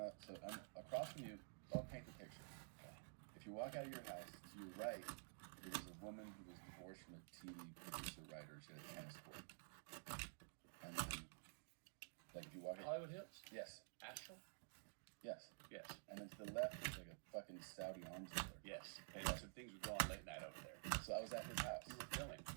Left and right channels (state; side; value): silent; left; digital silence